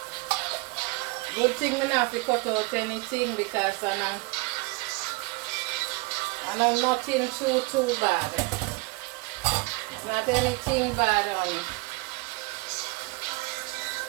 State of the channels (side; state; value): left; quieter; 25.8 dB